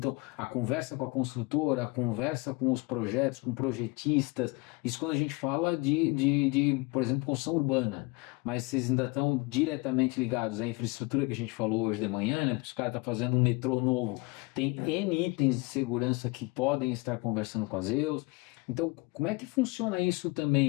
a conversa com a construtora, a conversa com os projetos, com projetistas, isso quando a gente fala de por exemplo, construção urbana, mas vocês ainda estão diretamente ligados à infraestrutura que a gente falou hoje de manhã, né, porque os caras estão fazendo um metrô novo, tem N itens de segurança que podem estar conversando com a Zeus. Então, como é que funciona isso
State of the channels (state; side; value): quieter; right; 25.0 dB